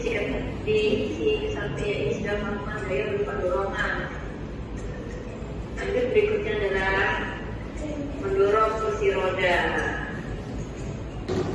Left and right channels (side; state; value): both; identical; correlation 1.00